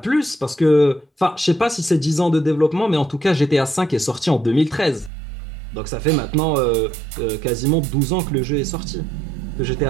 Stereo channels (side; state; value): left; drops out; at 5.1 s